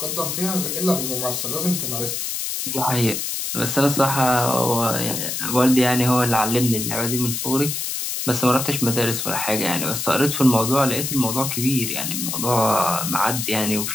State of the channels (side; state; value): left; noise; hiss, 3 dB below the sound